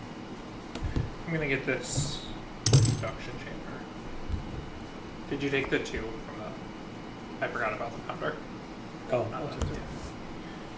I'm gonna get this induction chamber. Did you take the 2 from the? I forgot about the pounder. Oh, Not I'll the take it.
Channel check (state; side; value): identical; both; correlation 1.00